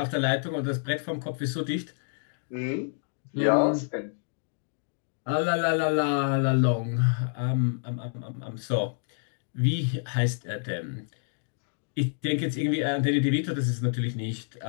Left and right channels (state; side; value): silent; right; digital silence